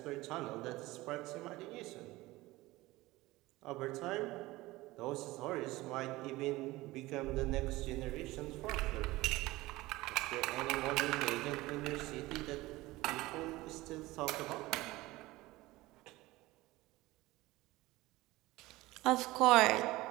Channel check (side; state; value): left; quieter; 19.3 dB